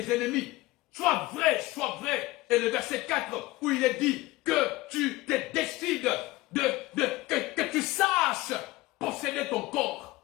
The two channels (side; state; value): right; quieter; 19.4 dB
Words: ennemis. Sois vrai, sois vrai. Et le verset 4 où il est dit que tu te décides que tu saches posséder ton corps.